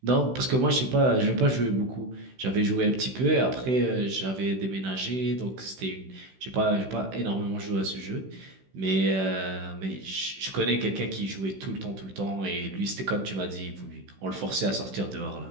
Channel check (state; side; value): late; left; 16 ms